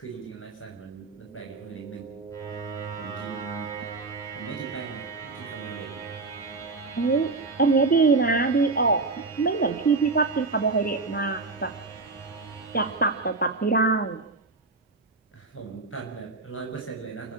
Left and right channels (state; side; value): quieter; left; 3.7 dB